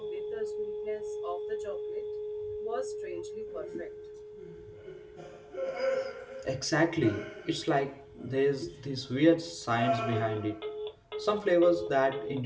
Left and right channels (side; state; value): both; identical; correlation 1.00